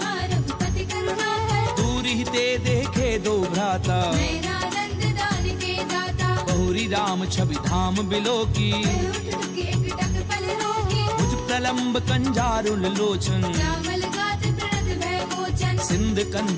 रघुपति करुणा कर दूरि ते देखे दो भ्राता नैना नंद दान के दाता बहुरी राम छवि धाम बिलो की कह उठ के एकटक पल रोकी भुज प्रलंब कंजारुल लोचन श्यामल गात प्रणत भय मोचन सिंध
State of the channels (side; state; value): both; identical; correlation 1.00